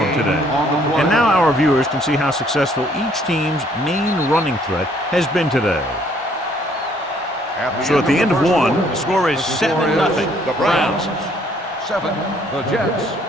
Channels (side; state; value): both; normal; correlation 0.63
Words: today. And now our viewers can see how successful each team's main running threat has been today. So at the end of one, the score is 7-0. The Browns. 7. The Jets.